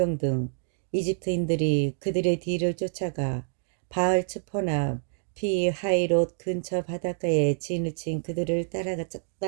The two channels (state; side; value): silent; left; digital silence